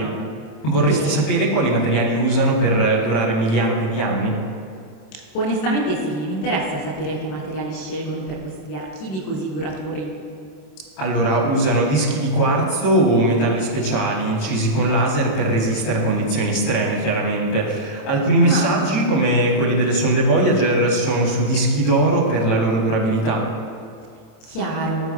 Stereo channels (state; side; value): late; right; 27 ms